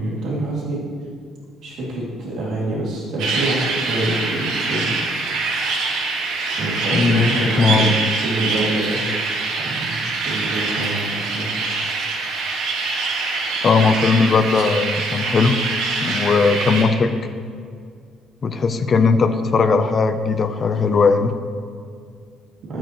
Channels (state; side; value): normal; both; correlation 0.68